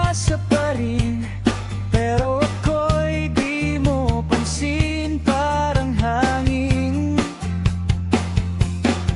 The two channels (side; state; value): both; identical; correlation 1.00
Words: pa rin, pero ako'y di mo pansin, parang hangin.